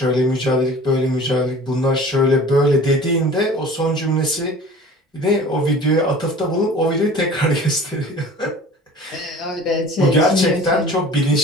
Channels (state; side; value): normal; both; correlation 0.43